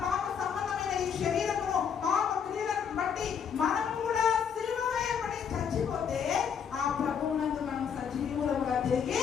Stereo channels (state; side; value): quieter; right; 7.3 dB